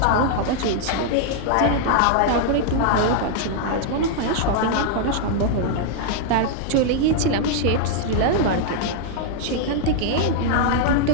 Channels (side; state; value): both; different; correlation -0.01